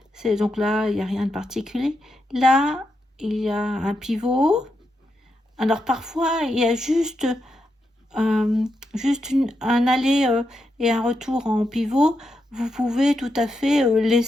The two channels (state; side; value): normal; both; correlation 0.84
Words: c'est donc là, il n'y a rien de particulier. Là, il y a un pivot. Alors parfois, il y a juste un aller et un retour en pivot. Vous pouvez tout à fait